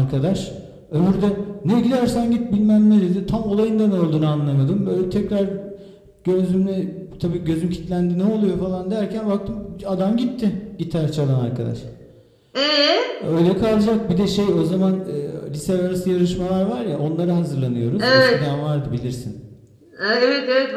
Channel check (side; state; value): both; identical; correlation 1.00